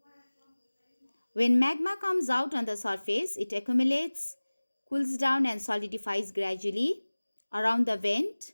When magma comes out on the surface, it accumulates, cools down and solidifies gradually around the vent,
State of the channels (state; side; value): inverted; both; correlation -1.00